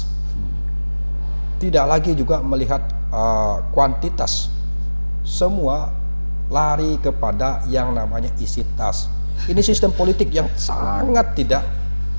Tidak lagi juga melihat kuantitas. Semua lari kepada yang namanya isi tas. Ini sistem politik yang sangat tidak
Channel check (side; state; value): both; inverted; correlation -1.00